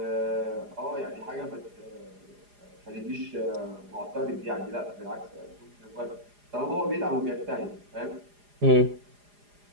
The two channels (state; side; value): late; left; 4.9 ms